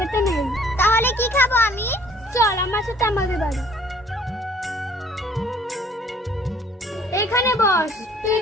নেই। তাহলে কি খাবো আমি? চল আমার সাথে আমাদের বাড়ি। এখানে বস, তুই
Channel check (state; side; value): normal; both; correlation 0.57